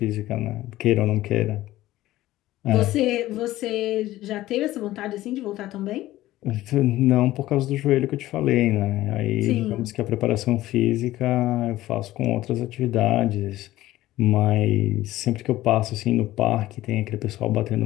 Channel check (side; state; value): right; quieter; 15.7 dB